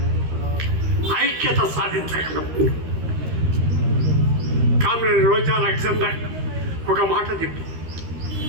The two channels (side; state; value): left; late; 13 ms